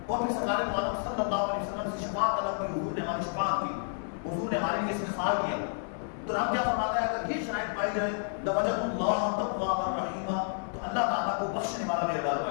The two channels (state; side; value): silent; right; digital silence